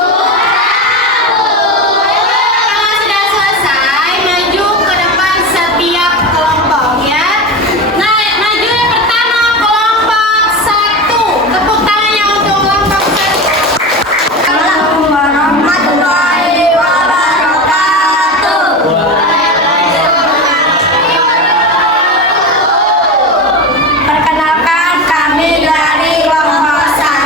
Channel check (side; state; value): both; normal; correlation 0.23